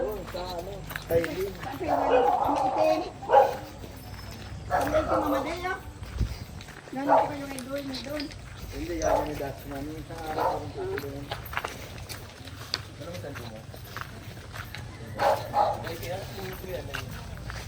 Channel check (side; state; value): both; identical; correlation 1.00